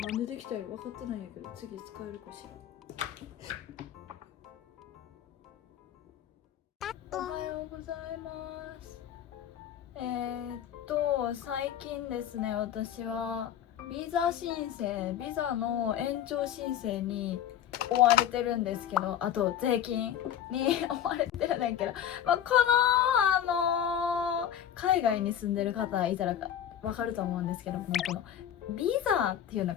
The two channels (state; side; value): quieter; right; 10.0 dB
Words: なんでできたよ分かってないんやけど、次使えるかしら。おはようございます。最近ですね、私はビザ申請、ビザの延長申請に追われてるんですけど、あと税金に追われてるんだけど、この海外に住んでる方いたらわかると思うんですけども、このビザっていうの